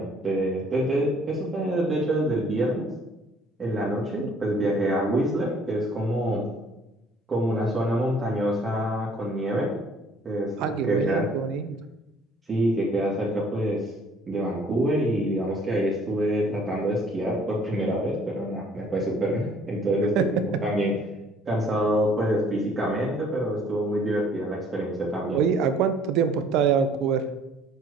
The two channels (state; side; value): normal; both; correlation 0.58